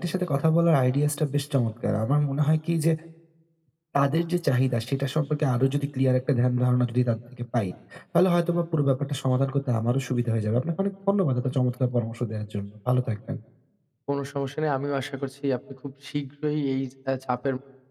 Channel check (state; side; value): identical; both; correlation 1.00